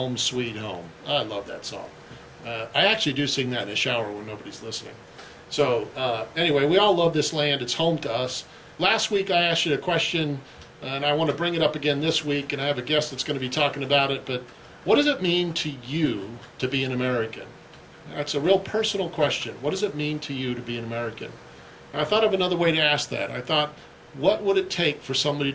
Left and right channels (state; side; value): identical; both; correlation 1.00